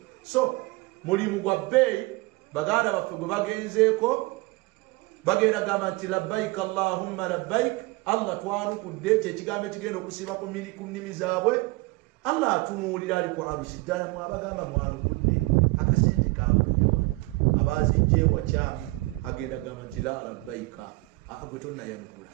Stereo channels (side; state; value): left; quieter; 23.2 dB